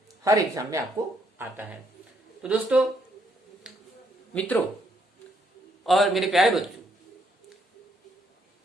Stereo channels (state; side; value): normal; both; correlation 0.72